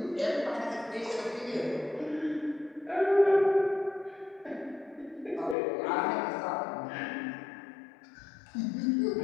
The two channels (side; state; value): right; drops out; at 5.6 s